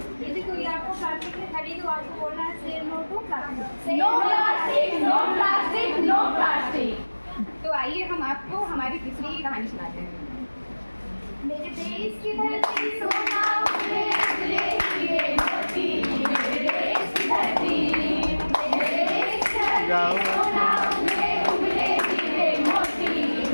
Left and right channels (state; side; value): inverted; both; correlation -1.00